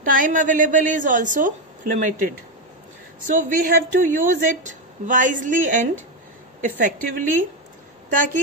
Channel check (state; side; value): normal; both; correlation 0.08